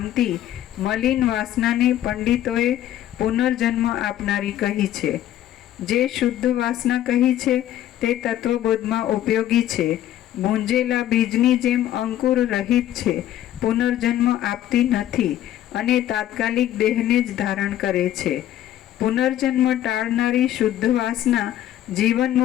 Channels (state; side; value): quieter; right; 12.3 dB